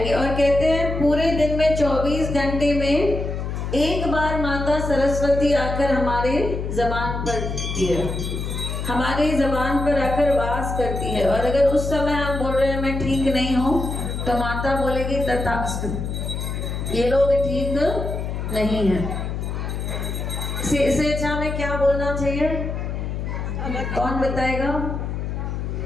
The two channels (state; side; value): noise; left; hum, 4 dB below the sound